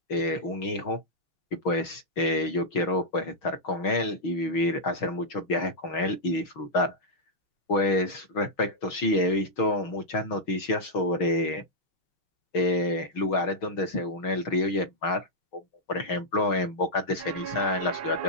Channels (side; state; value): right; late; 6.3 ms